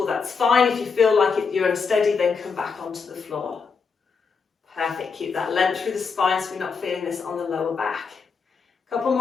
that's fine. If you feel like you're unsteady, then come back onto the floor. Perfect. Keep that length through the spine so we're not feeling this on the lower back. Couple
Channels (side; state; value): right; quieter; 5.3 dB